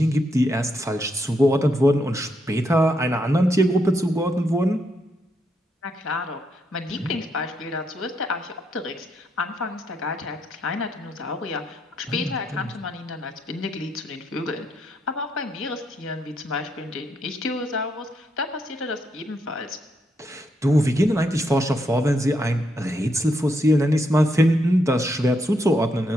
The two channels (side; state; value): both; normal; correlation 0.79